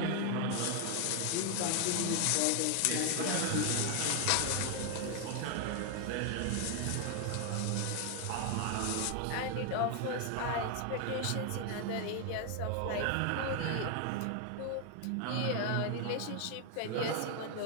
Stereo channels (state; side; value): different; both; correlation 0.00